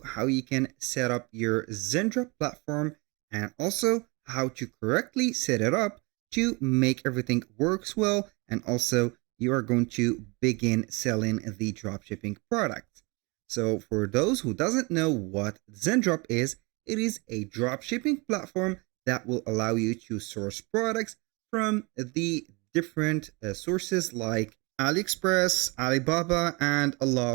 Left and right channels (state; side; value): quieter; left; 27.9 dB